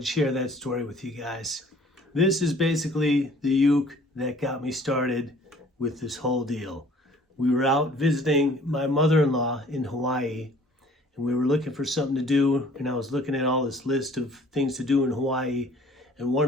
share that story with you guys. This is basically the uke that got me started with this whole deal. We were out visiting my mother-in-law in Hawaii, and we were looking for something to do, and I was looking at all this list of things to do in Hawaii, and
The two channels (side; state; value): both; normal; correlation 0.53